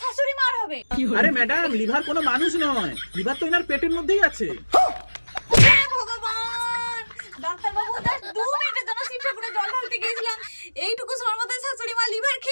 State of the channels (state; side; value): inverted; both; correlation -1.00